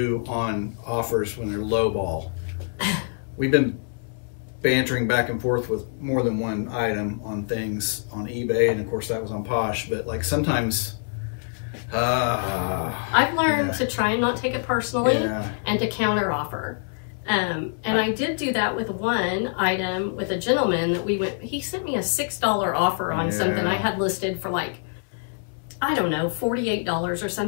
on offers when they're lowball? We've been bantering back and forth with more than one item on things on eBay, and of course that was on Posh, but like sometimes I've learned to try and not take it personally and to counter offer. And I did do that with one item with a gentleman that he sent me a $6 offer on something I had listed for like, I don't know, $48 or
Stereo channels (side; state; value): right; silent; digital silence